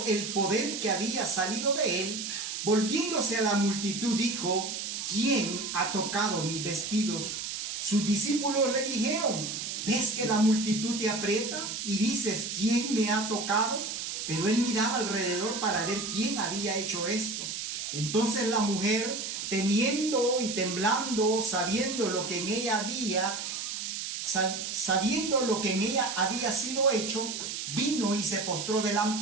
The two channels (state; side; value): noise; right; hiss, 5 dB below the sound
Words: el poder que había salido de él, volviéndose a la multitud, dijo: ¿quién ha tocado mis vestidos? Sus discípulos le dijeron: ¿ves que la multitud te aprieta y dices, ¿quién me ha tocado? Pero él miraba alrededor para ver quién había hecho esto. Entonces la mujer, temiendo y temblando, sabiendo lo que en ella había sido hecho, vino y se postró